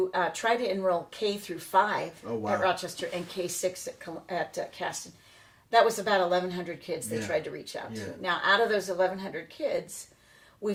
try to enroll K through 5 at Rochester and K6 at Caston. That was about 1,100 kids they tried to reach out to. Now, out of those 1,100 kids,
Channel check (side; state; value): both; identical; correlation 1.00